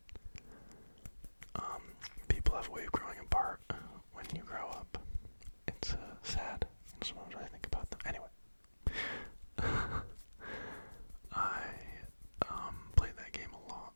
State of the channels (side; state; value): both; inverted; correlation -1.00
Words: People have a way of growing apart when you grow up. It's sad. Sometimes I think about them. Anyway, I played that game a lot,